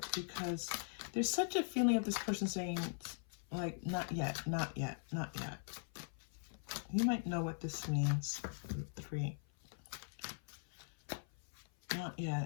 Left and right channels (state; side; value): silent; right; 50 dB below the other